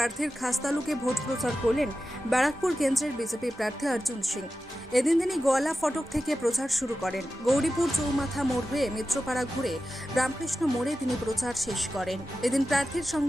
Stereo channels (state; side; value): normal; both; correlation 0.93